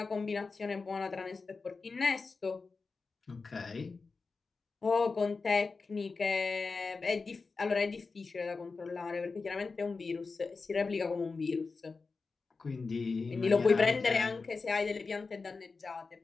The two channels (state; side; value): quieter; right; 4.3 dB